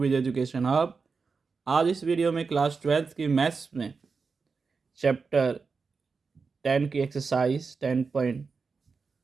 Education Hub. आज इस वीडियो में क्लास 12th की मैथ्स में चैप्टर 10 की एक्सरसाइज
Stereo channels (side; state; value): left; quieter; 4.8 dB